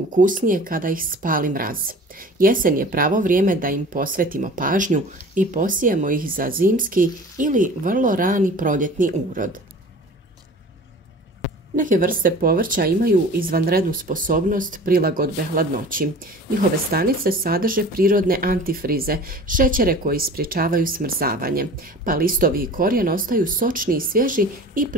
kada ih spali mraz. Jesen je pravo vrijeme da im posvetimo pažnju i posijemo ih za zimski ili vrlo rani proljetni urod. Neke vrste povrća imaju izvanrednu sposobnost prilagodbe hladnoći. Njihove stanice sadrže prirodne antifrize, šećere koji sprječavaju smrzavanje, pa listovi i korijen ostaju sočni i svježi i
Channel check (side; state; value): both; normal; correlation 0.42